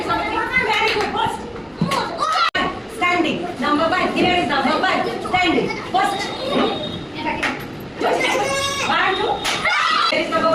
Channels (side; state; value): both; identical; correlation 1.00